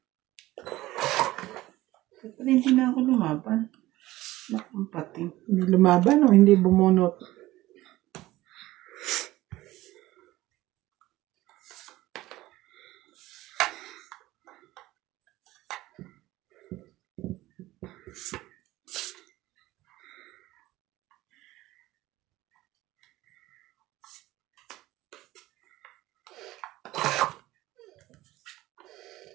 Ba't pala hindi na ako lumaban? Nakang pating. Hindi lumaban o hindi bumunot?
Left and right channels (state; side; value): quieter; left; 17.2 dB